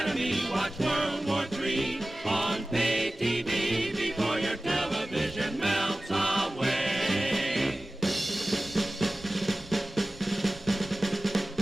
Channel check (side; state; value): both; normal; correlation 0.97